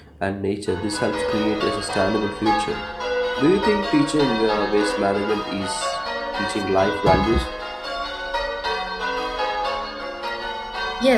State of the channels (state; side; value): identical; both; correlation 1.00